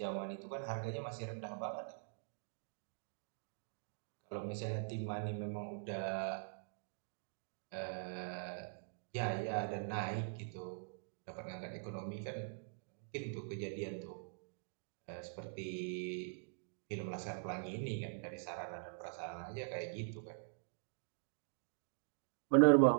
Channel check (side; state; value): left; silent; digital silence